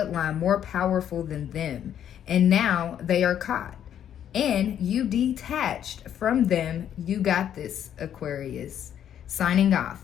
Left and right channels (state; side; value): quieter; right; 9.8 dB